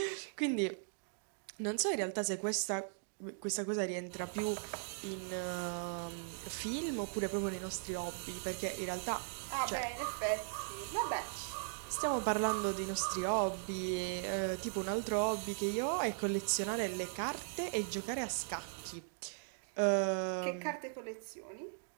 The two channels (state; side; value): silent; left; digital silence